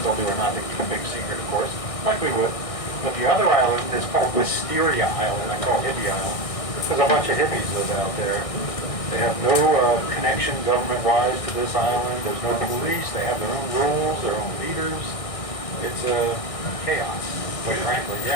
do or not. They keep a big secret, of course. Likely would. But the other island is called Wisteria Island. I call it Hippie Island. There's a bunch of hippies live out there. They have no connection government-wise to this island. There's no police. They have their own rules, their own leaders. It's chaos, quite frankly.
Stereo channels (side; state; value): right; late; 1.6 ms